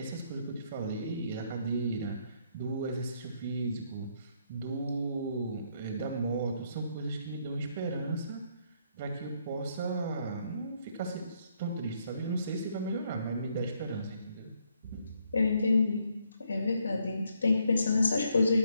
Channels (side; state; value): both; inverted; correlation -0.72